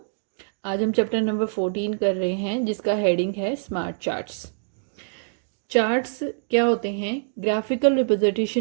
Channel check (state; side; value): silent; left; digital silence